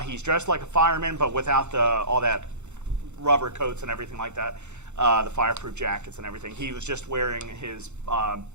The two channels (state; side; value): late; left; 0.83 ms